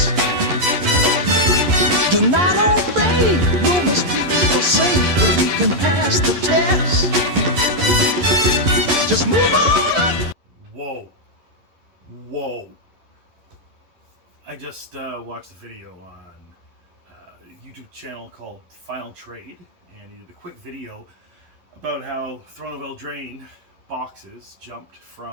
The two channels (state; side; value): late; left; 11 ms